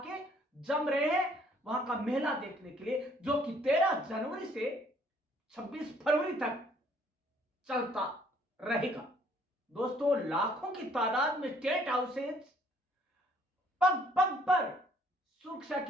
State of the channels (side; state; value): both; normal; correlation 0.62